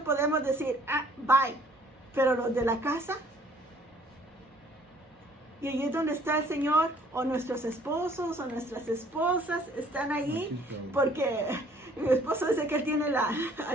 podemos decir, bye. Pero los de la casa, y allí es donde está el Señor, o nuestros esposos o nuestras esposas están allí, porque mi esposo dice que él tiene la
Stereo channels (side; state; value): both; normal; correlation 0.59